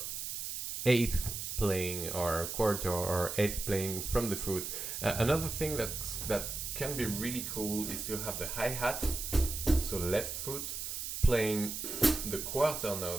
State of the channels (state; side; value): noise; right; hiss, 5 dB below the sound